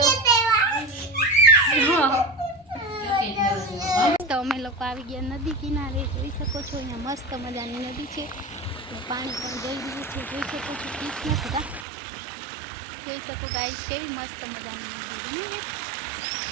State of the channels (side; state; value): left; drops out; at 11.9 s